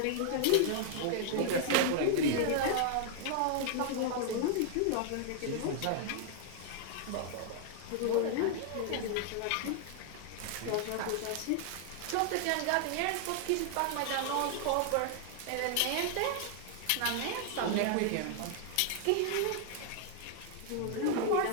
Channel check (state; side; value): different; both; correlation 0.00